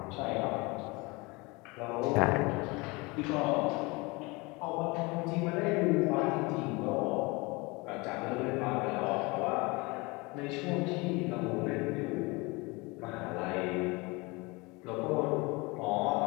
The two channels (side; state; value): right; quieter; 25.6 dB